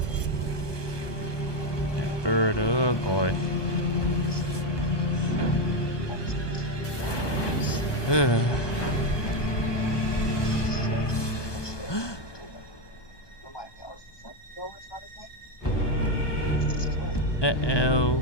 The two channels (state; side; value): late; right; 1.2 ms